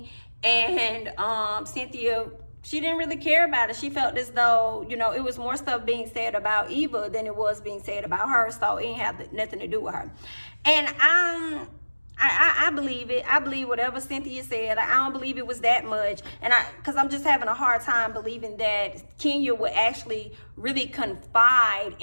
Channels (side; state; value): both; inverted; correlation -1.00